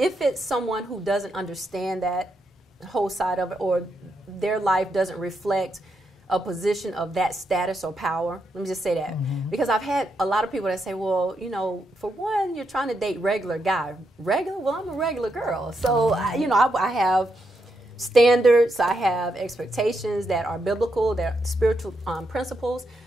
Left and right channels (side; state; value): both; normal; correlation 0.81